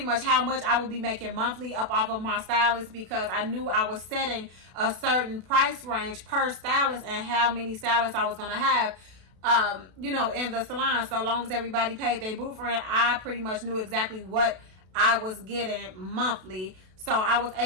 much how much I would be making monthly up off of my stylist, because I knew I was setting a certain price range per stylist and how many stylists I was going to have in the salon. So long as everybody paid their booth rent, I pretty much knew exactly what I was getting monthly. So I was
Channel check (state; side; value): late; left; 32 ms